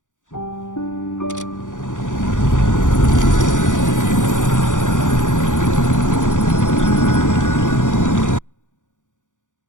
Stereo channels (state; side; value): late; right; 0.87 ms